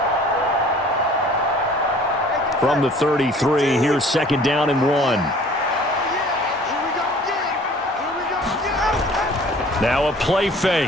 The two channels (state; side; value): normal; both; correlation 0.51